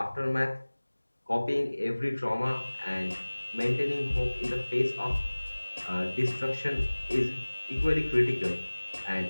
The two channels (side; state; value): both; inverted; correlation -1.00